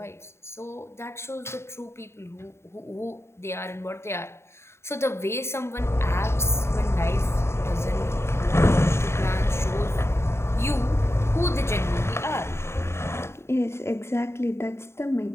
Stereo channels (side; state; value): right; late; 0.13 ms